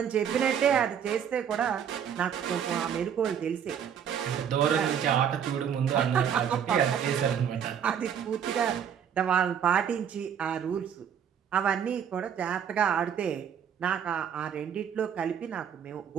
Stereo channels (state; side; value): quieter; left; 8.3 dB